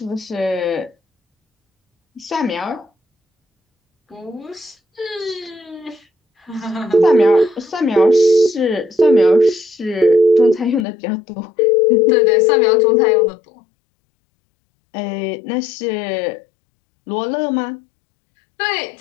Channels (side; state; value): right; drops out; at 10.9 s